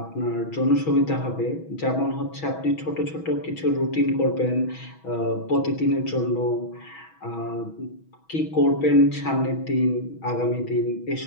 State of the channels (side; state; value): right; late; 6.2 ms